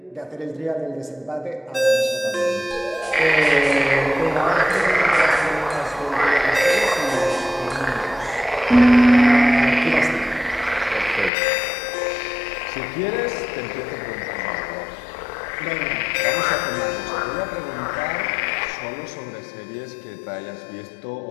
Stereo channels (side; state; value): right; drops out; at 11.3 s